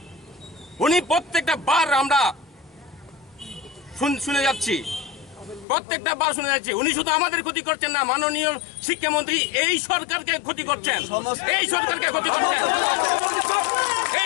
উনি প্রত্যেকটা বার আমরা শুনে যাচ্ছি প্রত্যেকটা বার শুনে যাচ্ছি উনি শুধু আমাদের ক্ষতি করছেন না মাননীয় শিক্ষামন্ত্রী এই সরকারকে ক্ষতি করছেন এই সরকারকে ক্ষতি করছেন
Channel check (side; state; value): right; drops out; at 5.7 s